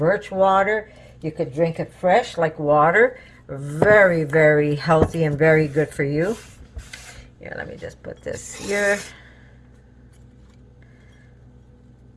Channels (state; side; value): identical; both; correlation 1.00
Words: water. You could drink it fresh like water. Very, very healthy and very good for you. Here, let me just put this here.